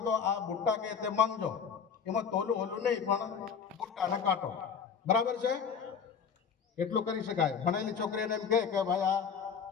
તો આ બુટ્ટા કે તે માંગજો. એમાં તોલું ઓલું નહીં, પણ બુટ્ટા અને કાંટો બરાબર છે, એટલું કરી શકાય. ભણેલી છોકરીને એમ કહે કે ભાઈ આ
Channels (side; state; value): right; quieter; 6.7 dB